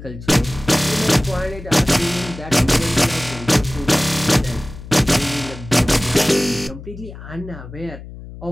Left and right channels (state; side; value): noise; left; hum, 14 dB below the sound